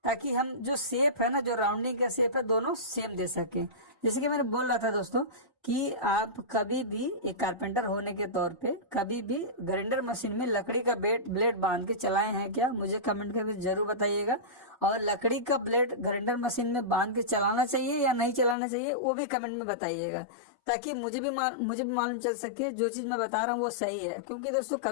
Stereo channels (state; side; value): drops out; right; at 18.6 s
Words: ताकि हम जो शेप है ना, जो राउंडिंग का शेप है, दोनों सेम दे सके। जैसे कि मैंने बोल रहा था दोस्तों कि आप कभी भी एक कारपेंटर होने के तौर पे कभी भी ग्राइंडर मशीन में लकड़ी का ब्लेड बांध के चलाए हैं क्या? मुझे कमेंट करके जरूर बताइएगा। और लकड़ी का ब्लेड ग्राइंडर मशीन में बांध के चलाना चाहिए या नहीं चलाना चाहिए, वो भी कमेंट में बताइएगा, ताकि मुझे भी मालूम चल सके जो चीज मैं बता रहा हूँ वो सही है। क्योंकि दोस्तों